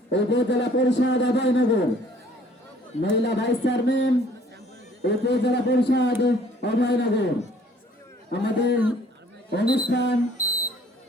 উপজেলা পরিষদ অভয়নগর, মহিলা ভাইস চেয়ারম্যান উপজেলা পরিষদ অভয়নগর। আমাদের অনুষ্ঠান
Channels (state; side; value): normal; both; correlation 0.57